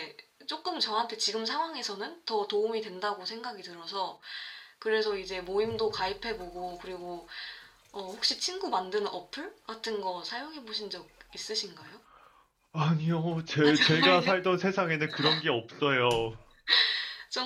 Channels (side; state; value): both; identical; correlation 1.00